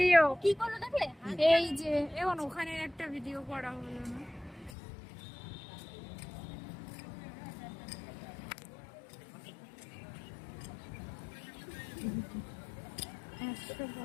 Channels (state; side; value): drops out; right; at 4.8 s